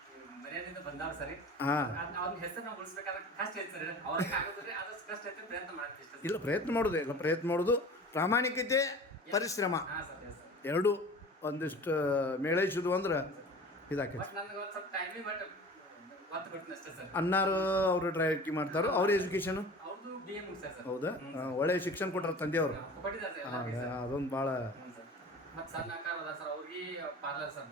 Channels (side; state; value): both; normal; correlation 0.39